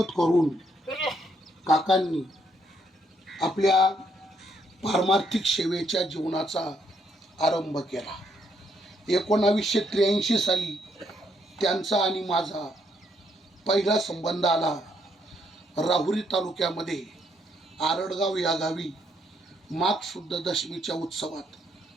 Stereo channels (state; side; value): normal; both; correlation 0.73